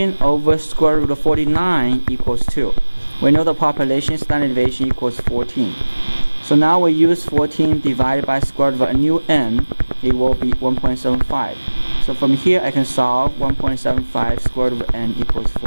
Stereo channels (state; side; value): inverted; both; correlation -1.00